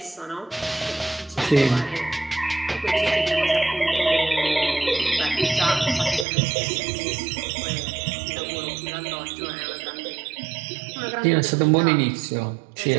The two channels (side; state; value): left; drops out; at 6.2 s